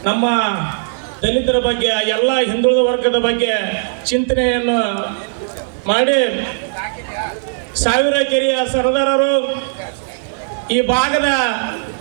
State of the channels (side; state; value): left; silent; digital silence